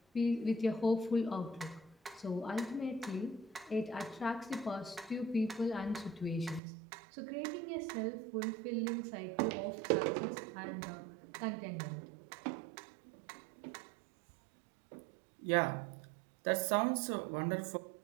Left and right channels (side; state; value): left; drops out; at 6.6 s